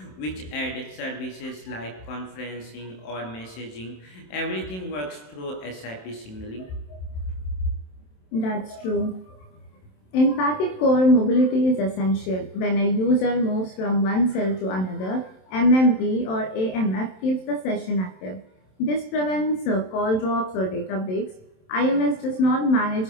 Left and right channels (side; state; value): right; late; 27 ms